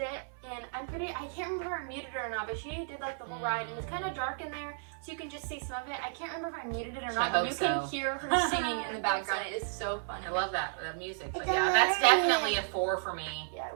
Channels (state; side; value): silent; left; 56 dB below the other